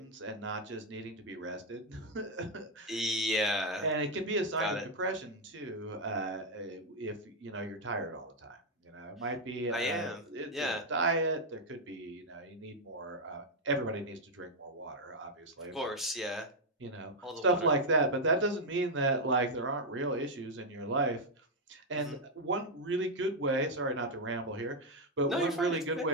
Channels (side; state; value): both; normal; correlation 0.00